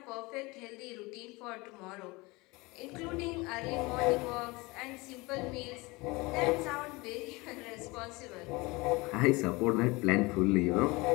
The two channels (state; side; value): quieter; right; 23.8 dB